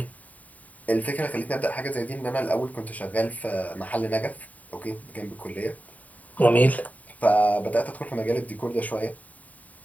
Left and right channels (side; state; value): right; late; 0.072 ms